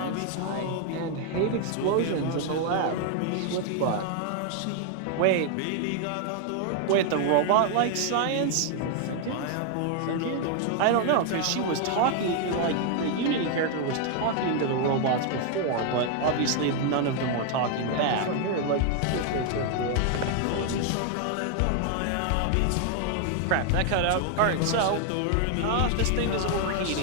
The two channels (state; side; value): different; both; correlation 0.00